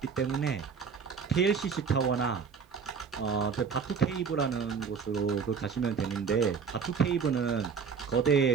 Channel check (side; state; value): left; quieter; 6.0 dB